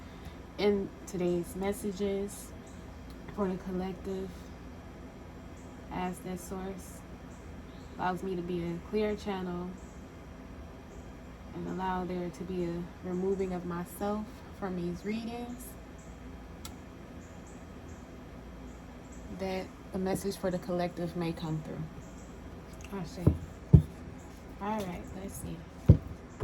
in today's messages for the collective, as that source allows me to be a clear channel and allow there to be a removing of myself from these readings, that the message for the collective may come through. I see. All right, let's see.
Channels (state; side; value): identical; both; correlation 1.00